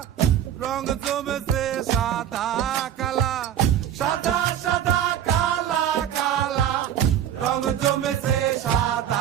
রং জমেছে সাদা কালা, সাদা সাদা কালা কালা রং জমেছে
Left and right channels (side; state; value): left; quieter; 10.1 dB